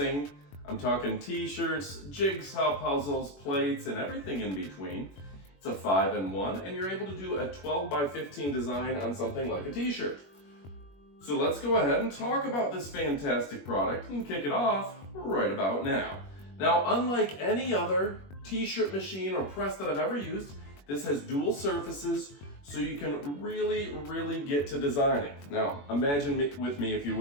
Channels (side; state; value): right; late; 21 ms